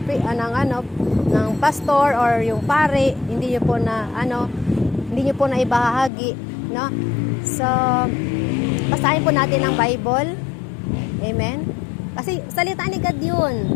pastor or yung pare, hindi niyo po na ibahagi, no? So basahin po natin ang Bible. Amen. Kasi salita ni God yun.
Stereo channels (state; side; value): drops out; right; at 6.1 s